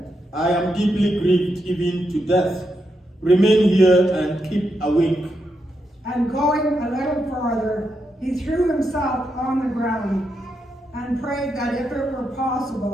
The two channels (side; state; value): both; normal; correlation 0.83